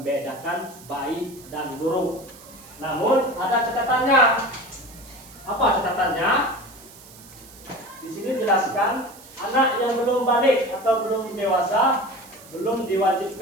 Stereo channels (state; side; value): noise; right; hiss, 20 dB below the sound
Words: baik dan buruk. Namun ada catatannya. Apa catatannya? Di sini jelaskan anak yang belum balik atau belum dewasa belum